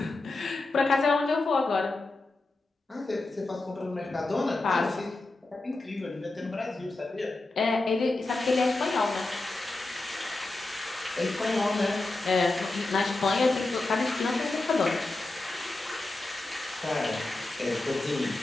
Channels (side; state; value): right; quieter; 3.1 dB